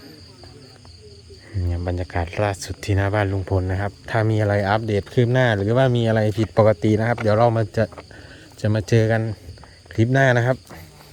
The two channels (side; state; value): both; identical; correlation 1.00